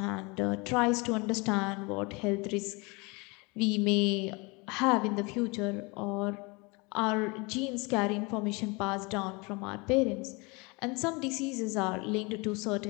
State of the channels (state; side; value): quieter; right; 27.6 dB